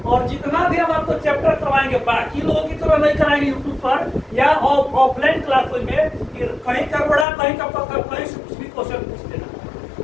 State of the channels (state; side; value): drops out; right; at 7.2 s